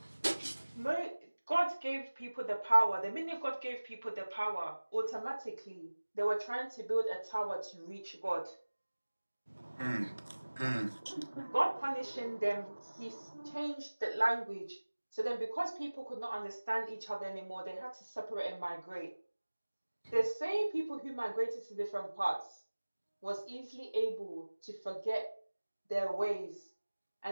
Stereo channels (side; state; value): both; inverted; correlation -1.00